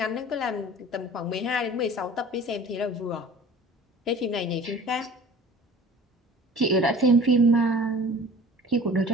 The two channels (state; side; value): normal; both; correlation 0.44